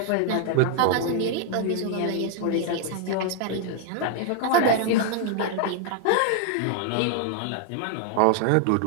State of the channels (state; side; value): different; both; correlation 0.00